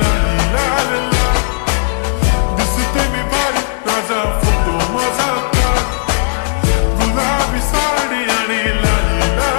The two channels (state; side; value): silent; right; digital silence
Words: लाल लाल, दिसते मी भारी राजा फोटो माझा काढ. गुलाबी साडी आणि लाली